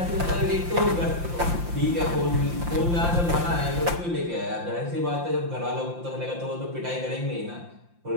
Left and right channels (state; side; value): late; left; 5.8 ms